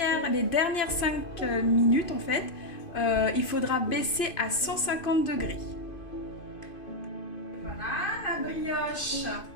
les dernières 5 minutes, en fait, il faudra baisser à 150 degrés. Voilà, la brioche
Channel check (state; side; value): late; right; 2.5 ms